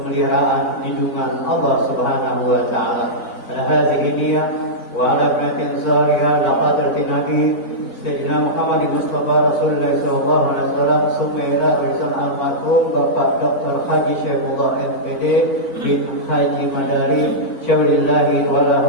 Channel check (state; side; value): late; right; 4.4 ms